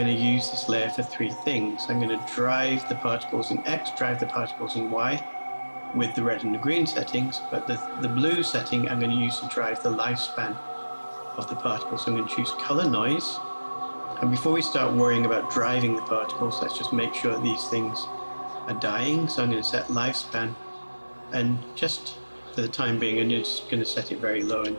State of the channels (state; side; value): inverted; both; correlation -1.00